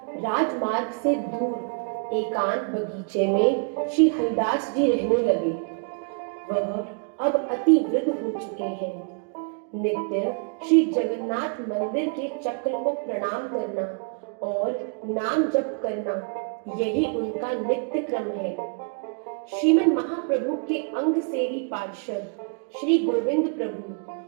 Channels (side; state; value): left; quieter; 39.5 dB